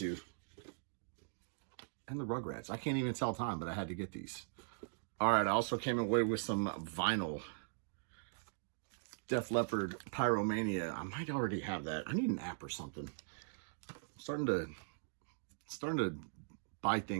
the Rugrats. I can't even tell time, but I had to get these. All right, I also came away with some vinyl. Def Leppard Pyromania. I might already have that. I need an app or something. I'm starting to buy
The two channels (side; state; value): left; silent; digital silence